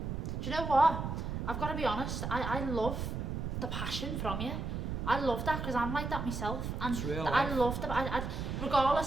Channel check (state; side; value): noise; right; rumble, 3 dB below the sound